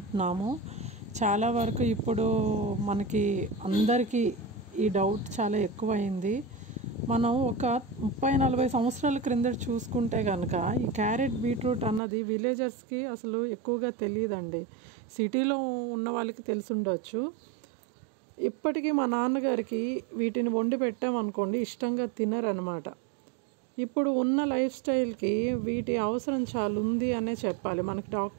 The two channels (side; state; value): left; drops out; at 12.0 s